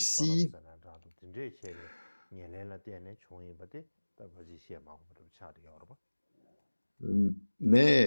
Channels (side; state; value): both; inverted; correlation -1.00